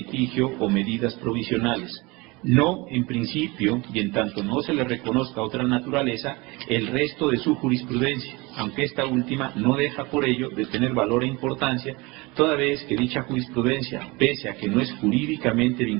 o medidas provisionales. No, en principio, y en tanto no se le reconozca otra naturaleza, el resto de su jurisprudencia, aunque esta última no deja por ello de tener valor e importancia, toda vez que dicha jurisprudencia, pese a que no es jurídicamente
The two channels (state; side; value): quieter; left; 24.6 dB